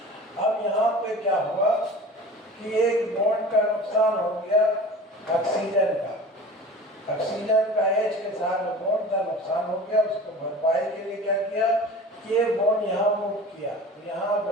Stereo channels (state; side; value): normal; both; correlation 0.39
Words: अब यहाँ पे क्या हुआ कि एक बॉन्ड का नुकसान हो गया ऑक्सीजन का, ऑक्सीजन का H के साथ बॉन्ड का नुकसान हो गया। उसको भरपाई के लिए क्या किया? ये बॉन्ड यहाँ मूव किया तो यहाँ